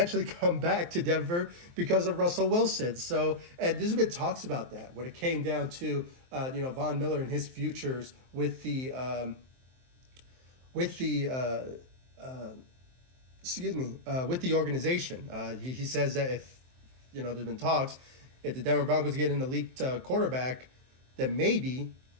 come back to Denver because of Russell Wilson. So, and there's been talks about that when it came down to Von Miller and his futures with the organization. He says that if there's been talks, if the Denver Broncos get an elite quarterback, that maybe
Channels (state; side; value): late; left; 23 ms